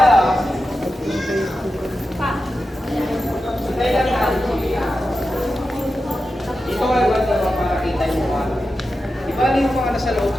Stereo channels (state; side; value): normal; both; correlation 0.91